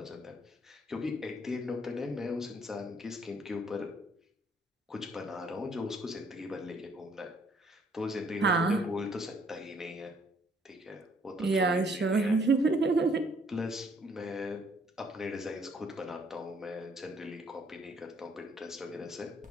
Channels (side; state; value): both; normal; correlation 0.64